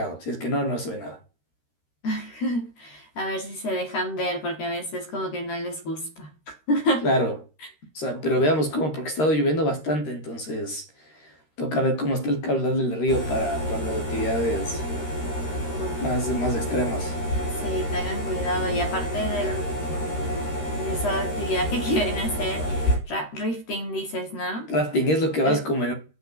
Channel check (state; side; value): late; right; 13 ms